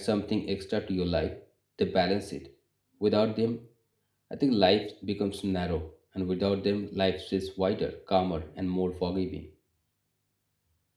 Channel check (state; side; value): identical; both; correlation 1.00